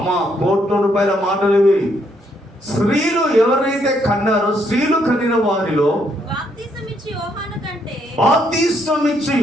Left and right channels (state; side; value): normal; both; correlation 0.73